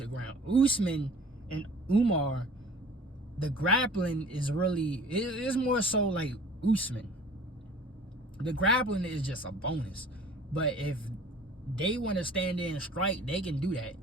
the ground. Usman and Umar, the grappling is really, it's more so like Usman. The grappling is just a bonus. But if they want to stand there and strike, they can do that.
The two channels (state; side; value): normal; both; correlation 0.47